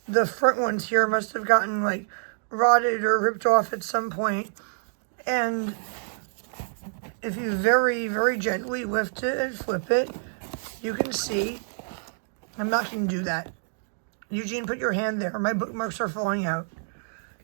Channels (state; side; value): silent; left; 60 dB below the other